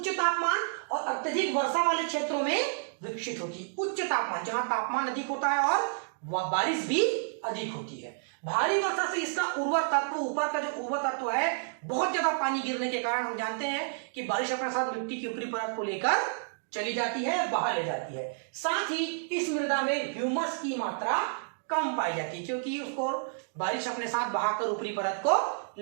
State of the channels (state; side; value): silent; left; digital silence